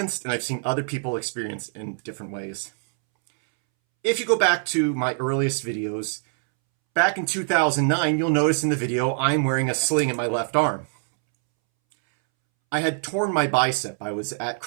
and I've seen other people experience in different ways. If you go back to my earliest videos, back in 2009, you'll notice in the video I'm wearing a sling in my left arm. I had torn my bicep. I was at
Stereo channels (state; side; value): silent; left; 63 dB below the other